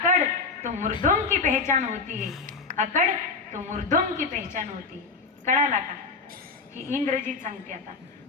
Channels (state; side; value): quieter; right; 4.5 dB